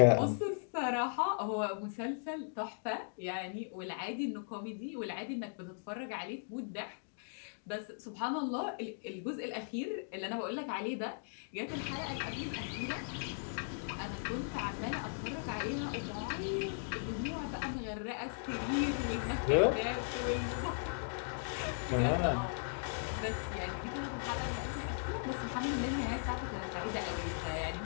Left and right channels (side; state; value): right; silent; digital silence